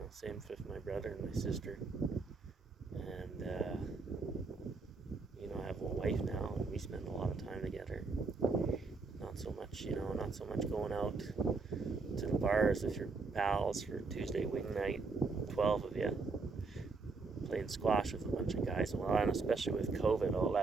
same with my brother and my sister. And I have a wife now, and we spend a lot of time together. Not so much going out to the bars with your pals for Tuesday wing night, 12 of you, playing squash with a bunch of guys. Well, and especially with COVID, all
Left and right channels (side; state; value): left; quieter; 4.1 dB